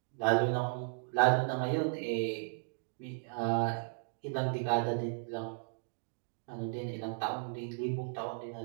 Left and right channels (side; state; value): left; silent; digital silence